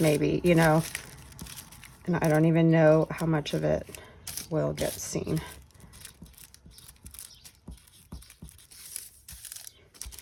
you know, and I don't even know how much of it will get seen.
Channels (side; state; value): both; identical; correlation 1.00